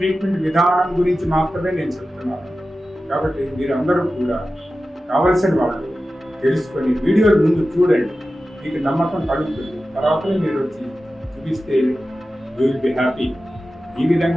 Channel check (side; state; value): both; normal; correlation 0.94